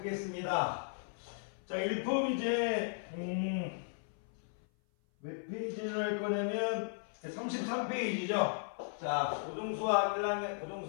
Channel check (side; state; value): right; silent; 54 dB below the other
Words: 자, 1품 이제, 몇 페이지를 할 거냐면, 33페이지죠. 자, 고등수학 1학년,